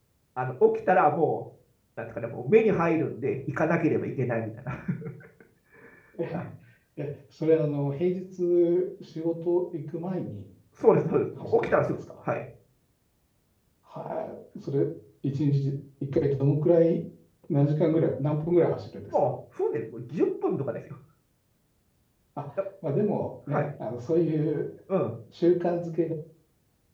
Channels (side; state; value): both; identical; correlation 1.00